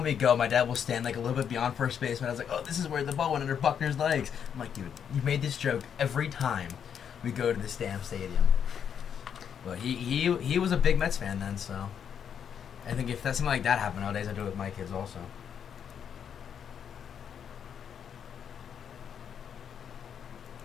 we go, my dad will stand like a little bit beyond first base, and I was like, "Oh, this is where the ball went under Buckner's legs." I'm like, "Dude, you made this joke every time we go to this damn stadium." But he was a big Mets fan then, so I think if that's something like that happened nowadays, I do it with my kids also.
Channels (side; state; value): right; quieter; 8.0 dB